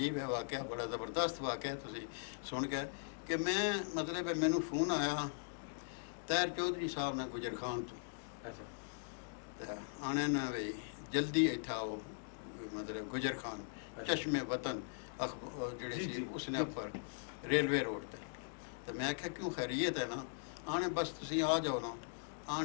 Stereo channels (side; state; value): right; silent; digital silence